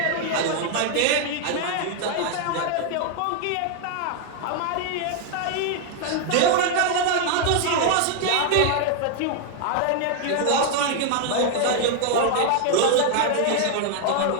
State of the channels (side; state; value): both; different; correlation 0.00